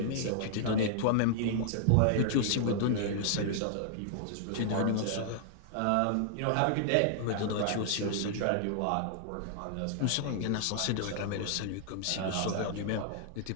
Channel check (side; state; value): both; different; correlation -0.01